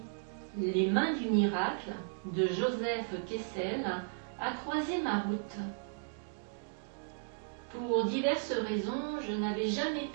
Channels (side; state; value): left; silent; digital silence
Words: Les mains du miracle, de Joseph Kessel, a croisé ma route. Pour diverses raisons, je n'avais jamais